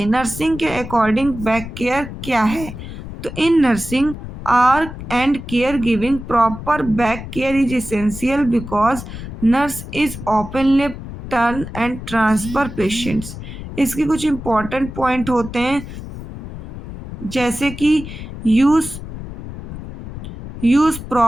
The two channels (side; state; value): left; noise; rumble, 11 dB below the sound